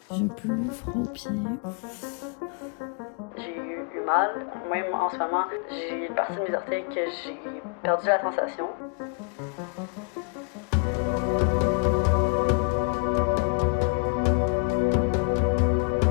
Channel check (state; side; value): quieter; right; 37.1 dB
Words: J'ai plus froid aux pieds. J'ai eu mal, même en ce moment, j'ai une partie de mes orteils que j'ai perdu la sensation.